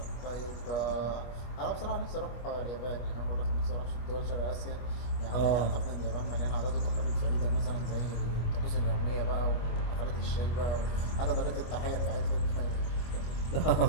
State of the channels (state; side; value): late; right; 25 ms